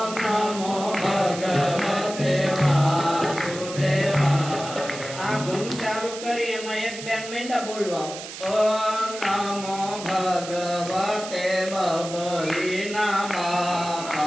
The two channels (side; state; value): right; noise; hiss, 11 dB below the sound